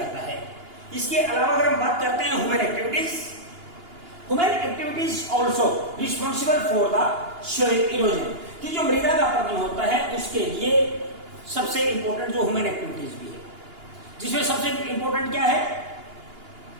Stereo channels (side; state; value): left; late; 2.9 ms